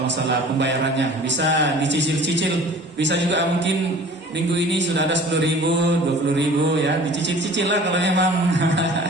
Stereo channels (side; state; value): both; normal; correlation 0.45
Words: masalah pembayarannya bisa dicicil-cicil, bisa juga mungkin minggu ini sudah ada 10.000, 20.000 ya, dicicil-cicil lah kalau memang